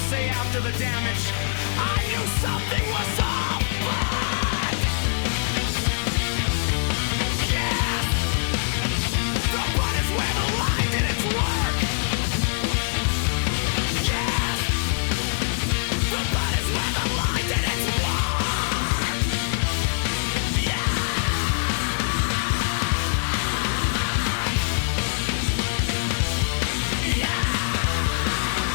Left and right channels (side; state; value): right; silent; 63 dB below the other